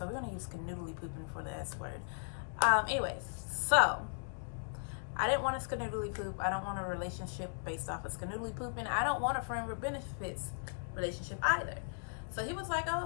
we're gonna use canoodly pooping for the S word. Anyways, so I didn't want a skanoodly poop. I don't want a relationship based off of skanoodly pooping. I don't want a friend with benefits relationship either. So he was like, oh,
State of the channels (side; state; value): right; silent; digital silence